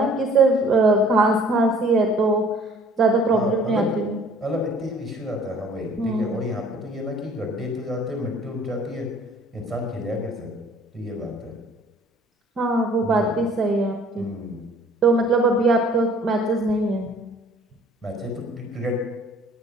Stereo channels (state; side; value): normal; both; correlation 0.54